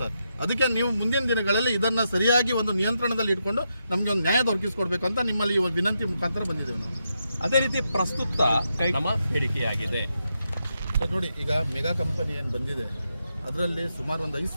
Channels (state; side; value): inverted; both; correlation -0.84